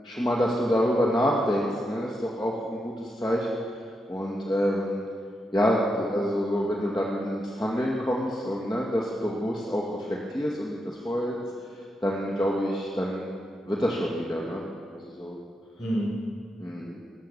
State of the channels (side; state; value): both; normal; correlation 0.84